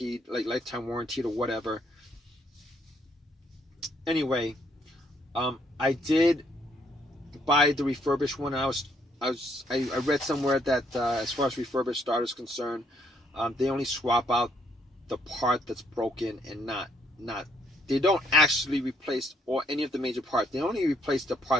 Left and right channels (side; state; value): both; normal; correlation 0.70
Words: like lifetime warranted or whatever. Anyway, I did buy the refurbished one. I read somewhere that as far as refurbished starters concerned, they only swap out the part that's broken and not. They don't actually replace any of the major parts. They only replace the